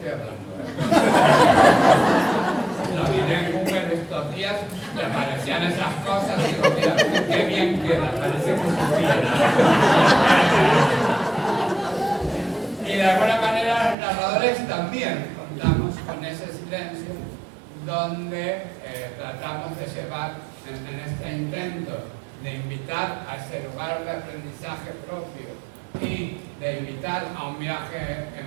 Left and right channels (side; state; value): left; drops out; at 14.0 s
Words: hablando. Lo miré en Google estos días, me aparecían esas cosas y digo, mira, qué bien queda, parece que supiera. Y de alguna manera los narradores también contamos con ese silencio donde tratamos de llevar en este intento de invitar a ese lugar de aprendizaje propio y de invitar a un viaje